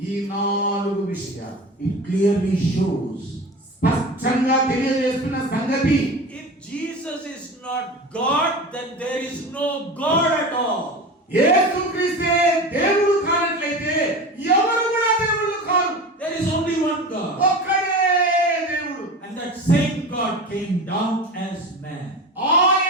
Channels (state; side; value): normal; both; correlation 0.31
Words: ఈ 4 విషయాలు it clearly shows, స్పష్టంగా తెలియజేస్తున్న సంగతి, if Jesus is not God, then there is no God at all. యేసుక్రీస్తే దేవుడు కానట్లయితే ఎవరు కూడా దేవుళ్ళు కాదు. There is only one God. ఒక్కడే దేవుడు. And that same God came down as man. ఆ